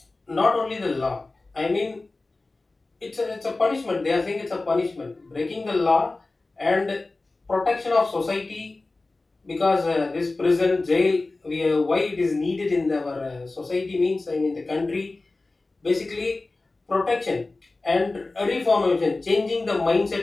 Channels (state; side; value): quieter; right; 3.3 dB